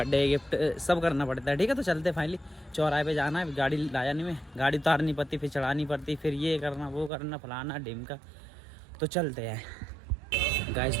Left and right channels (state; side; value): drops out; left; at 7.1 s